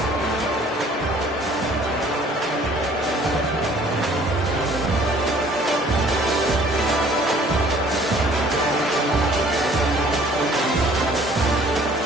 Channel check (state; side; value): normal; both; correlation 0.55